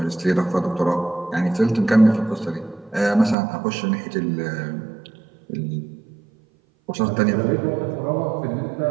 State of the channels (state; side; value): drops out; left; at 3.4 s